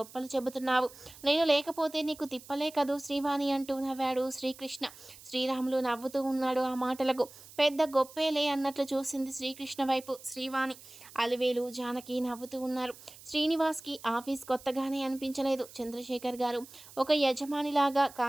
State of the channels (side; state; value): right; noise; hiss, 19 dB below the sound